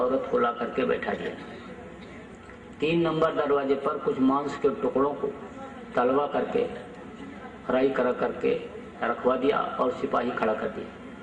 को ला करके बैठा दिया। 3 नंबर दरवाजे पर कुछ मांस के टुकड़ों को तलवा करके फ्राई करके रखवा दिया और सिपाही खड़ा कर दिया।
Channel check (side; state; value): both; identical; correlation 1.00